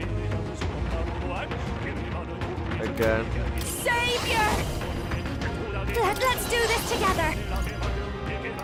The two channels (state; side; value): identical; both; correlation 1.00